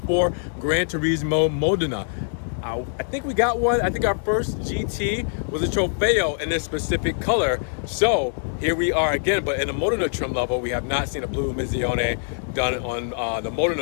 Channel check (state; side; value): silent; right; digital silence